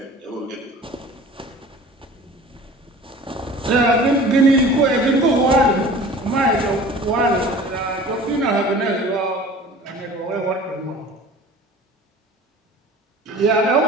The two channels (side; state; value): both; normal; correlation 0.43